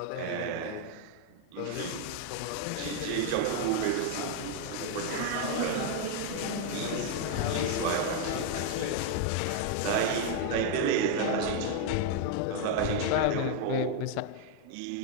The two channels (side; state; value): both; different; correlation 0.00